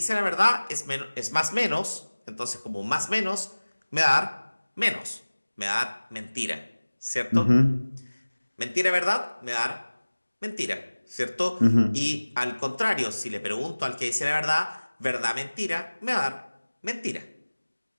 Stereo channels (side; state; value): both; inverted; correlation -1.00